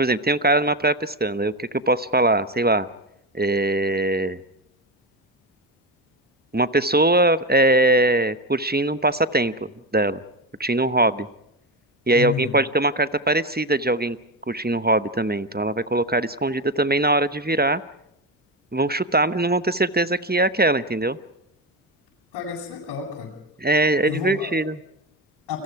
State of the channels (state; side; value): normal; both; correlation 0.15